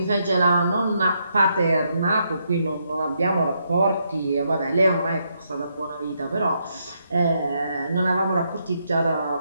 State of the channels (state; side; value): inverted; both; correlation -0.78